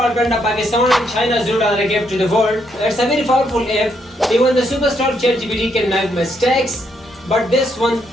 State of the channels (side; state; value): both; normal; correlation 0.75